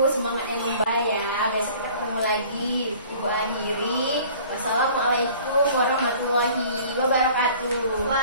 semangat yang membaik ya. Besok kita ketemu lagi. Ibu akhiri. Wassalamualaikum warahmatullahi wabarakatuh.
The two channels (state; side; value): inverted; both; correlation -0.49